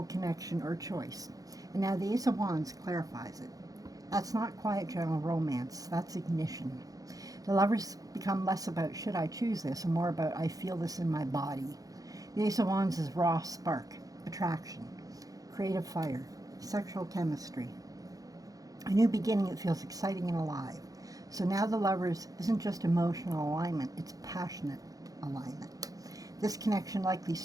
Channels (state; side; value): late; left; 0.17 ms